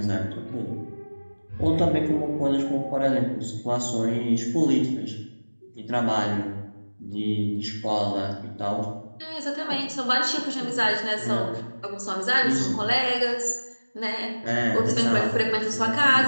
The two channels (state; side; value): inverted; both; correlation -1.00